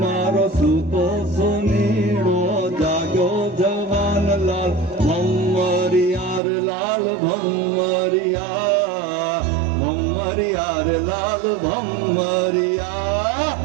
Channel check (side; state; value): left; drops out; at 6.4 s